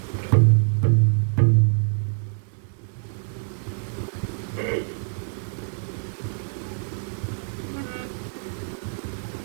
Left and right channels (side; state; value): left; silent; 62 dB below the other